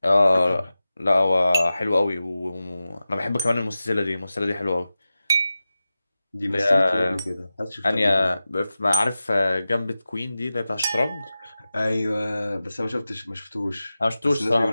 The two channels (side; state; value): both; inverted; correlation -0.94